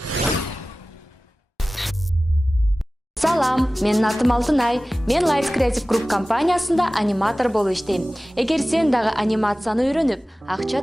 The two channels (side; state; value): both; normal; correlation 0.97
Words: Салам, менин атым Алтынай. Мен Lights Creative Group компаниясында аниматор болуп иштейм. Эгер сен дагы анимацияны үйрөнүп, акча